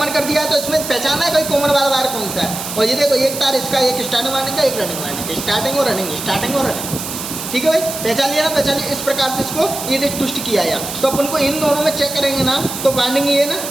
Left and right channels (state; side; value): noise; right; hiss, 7 dB below the sound